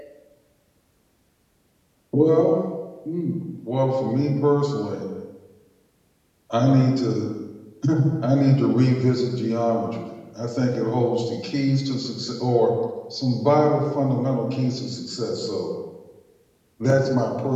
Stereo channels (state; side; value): identical; both; correlation 1.00